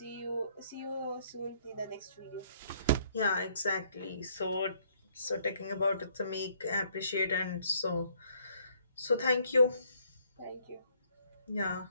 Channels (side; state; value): both; inverted; correlation -0.66